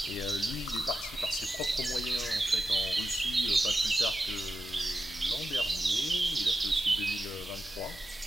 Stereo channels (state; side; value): normal; both; correlation 0.89